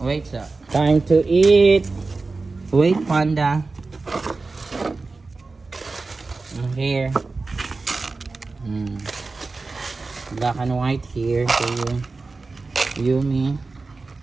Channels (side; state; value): left; quieter; 3.8 dB